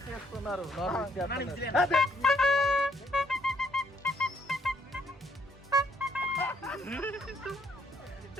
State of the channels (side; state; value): both; normal; correlation 0.70